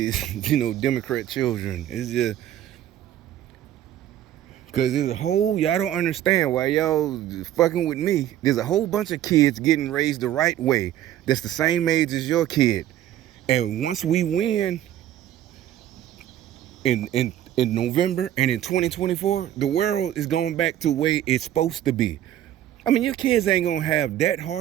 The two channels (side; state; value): left; quieter; 12.0 dB